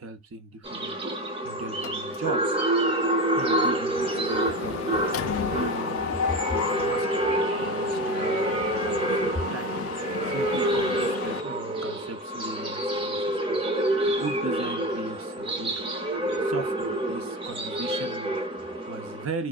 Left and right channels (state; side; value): normal; both; correlation 0.23